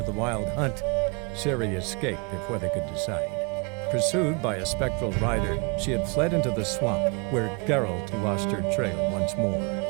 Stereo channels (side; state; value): left; quieter; 32.4 dB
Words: the Wild Hunt. Ciri escaped before they could decide. Pursued by a spectral rider, she had fled into the swamp, where Geralt lost her trail once more.